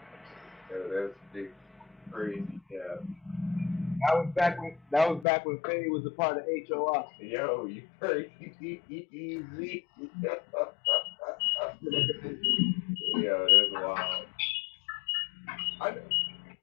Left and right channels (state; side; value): drops out; right; at 5.2 s